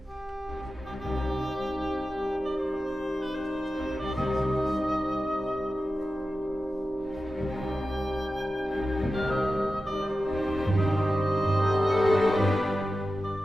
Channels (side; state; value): both; normal; correlation 0.93